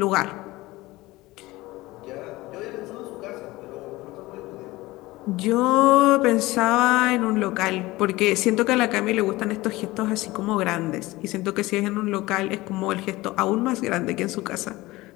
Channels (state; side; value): quieter; right; 19.6 dB